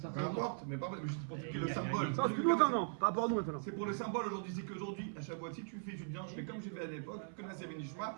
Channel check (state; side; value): silent; left; 51 dB below the other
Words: Peu importe, mais pas juste pour expliquer le symbole. Ça, c'est plus longtemps, non. Par rapport à nous maintenant. C'est pour le symbole aujourd'hui, c'est qu'aujourd'hui, à Shavuot, si tu viens, je fais comme j'ai fait à l'époque, que Nassé Benishma,